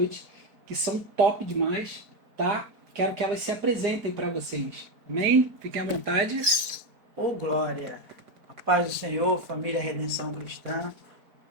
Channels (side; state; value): left; late; 4.5 ms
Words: que são top demais, tá? Quero que elas se apresentem para vocês. Amém? Fiquem à vontade. Ô glória, a paz do Senhor, família Redenção Cristã.